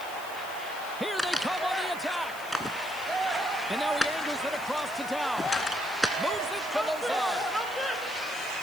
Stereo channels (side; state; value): left; noise; hiss, 16 dB below the sound